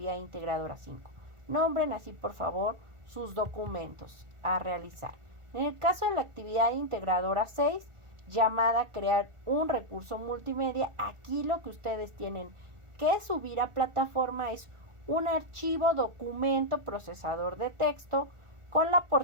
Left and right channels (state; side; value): late; left; 1.4 ms